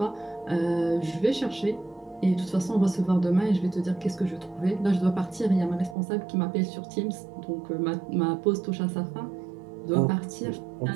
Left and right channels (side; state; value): left; drops out; at 6.0 s